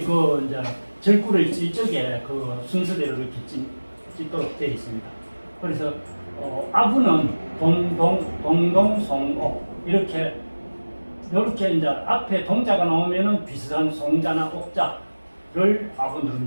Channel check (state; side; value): inverted; both; correlation -1.00